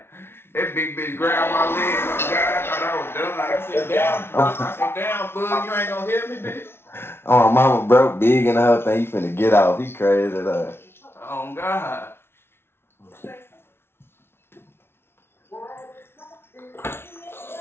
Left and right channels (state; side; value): late; right; 0.12 ms